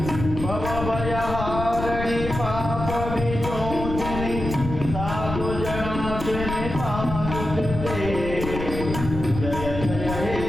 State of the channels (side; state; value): left; noise; rumble, 6 dB below the sound